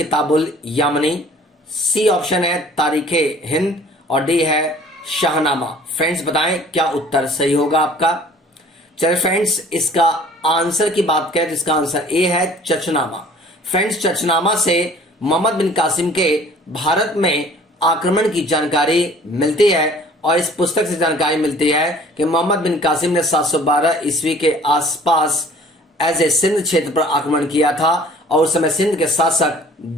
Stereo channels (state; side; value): normal; both; correlation 0.51